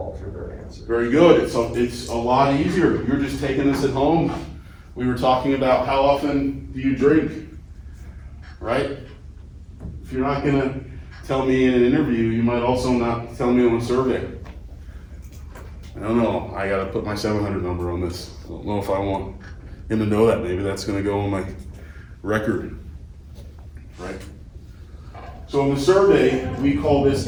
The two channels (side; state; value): both; identical; correlation 1.00